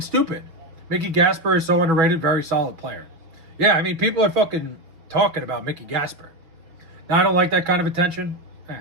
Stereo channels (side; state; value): left; late; 6.1 ms